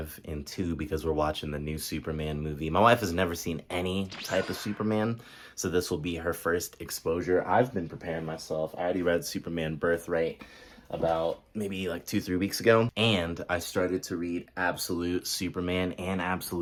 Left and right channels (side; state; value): both; identical; correlation 1.00